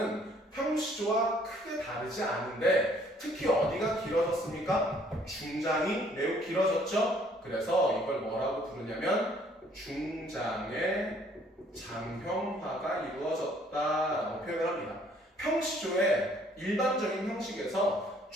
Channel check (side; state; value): both; normal; correlation 0.61